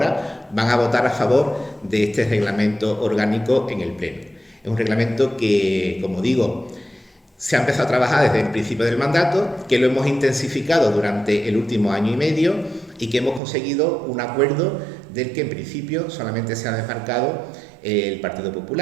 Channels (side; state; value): left; drops out; at 13.4 s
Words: van a votar a favor de este reglamento orgánico en el Pleno. Es un reglamento que, como digo, se ha empezado a trabajar desde el principio del mandato, que lo hemos intensificado durante el último año y medio y que hemos conseguido un acuerdo del que en principio solamente se ha desmarcado el Partido